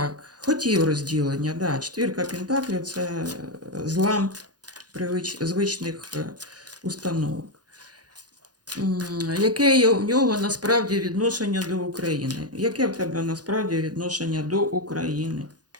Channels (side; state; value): left; late; 0.69 ms